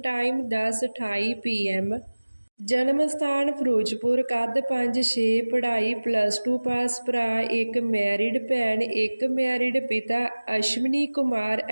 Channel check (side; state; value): both; inverted; correlation -1.00